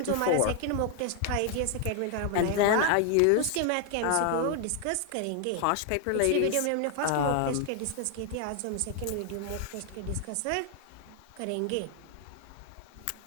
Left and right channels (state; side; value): different; both; correlation 0.00